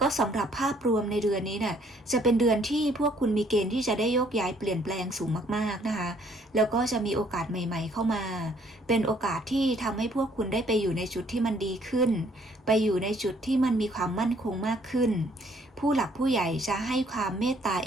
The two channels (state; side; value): normal; both; correlation 0.63